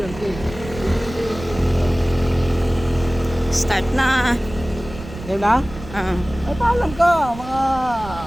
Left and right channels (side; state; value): right; noise; rumble, 14 dB below the sound